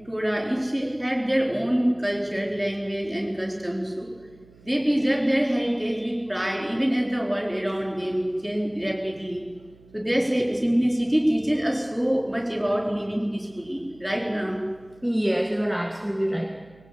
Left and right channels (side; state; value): right; noise; hum, 26 dB below the sound